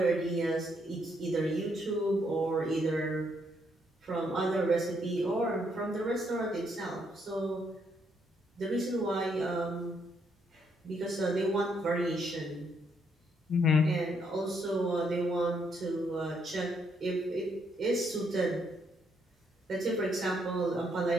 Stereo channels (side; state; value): both; normal; correlation 0.74